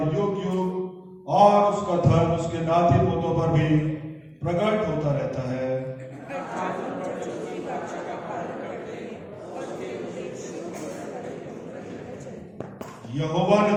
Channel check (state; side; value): identical; both; correlation 1.00